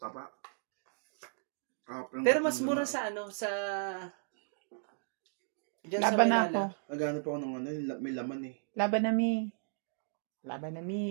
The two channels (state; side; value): silent; left; digital silence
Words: pero mas mura sa sa... Diyan sa Laban na Manila. ako. Nagano pa ako ng may laman eh. Laban na mi. Laban na